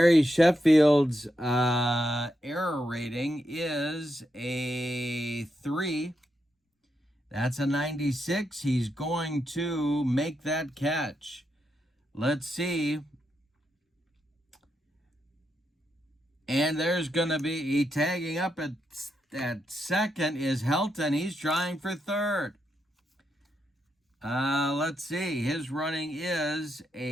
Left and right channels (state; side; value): normal; both; correlation 0.83